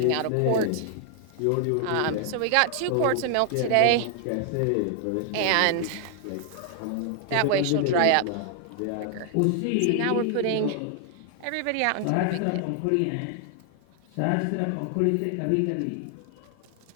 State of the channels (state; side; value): different; both; correlation 0.00